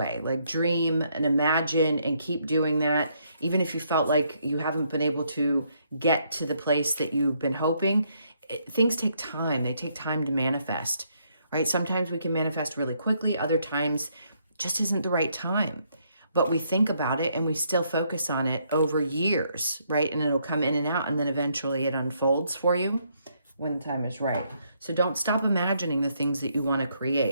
Like dream and imagine and keep doing that. Even if you felt like you haven't been able to get to the place that you've been hoping, things take time. They take time to manifest, right? Sometimes we can manifest really quickly. Other times just isn't the right time. But we think about it and we still focus on it over years, right? And it'll come in and out, and then eventually it unfolds for you when the time is right. So don't stop imagining the things that you want to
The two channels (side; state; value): both; inverted; correlation -0.72